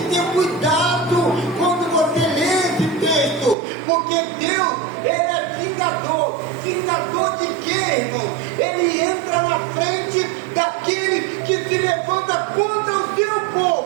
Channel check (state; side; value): drops out; left; at 3.6 s